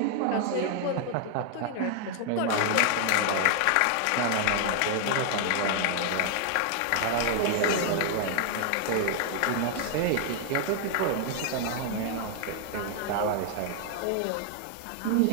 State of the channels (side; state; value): both; different; correlation 0.00